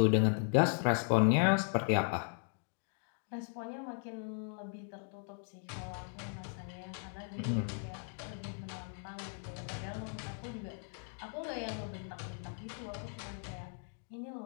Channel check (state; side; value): silent; right; 53 dB below the other